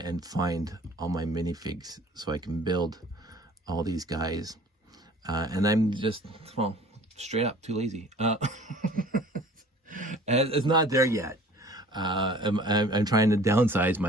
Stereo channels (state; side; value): normal; both; correlation 0.48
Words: find all my minifigs so I can build all these guys. And I'm just, well, Straight up, too lazy. And it's not there yet. I'm trying to downsize